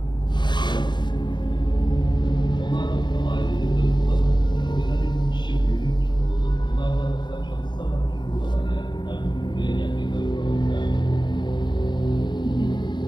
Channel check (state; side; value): late; right; 0.22 ms